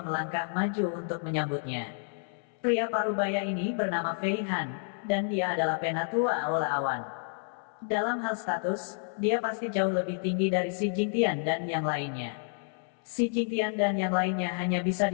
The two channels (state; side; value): silent; right; 58 dB below the other